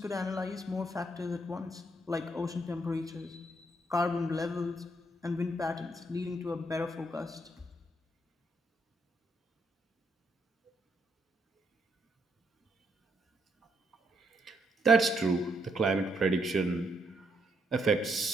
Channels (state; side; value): normal; both; correlation 0.75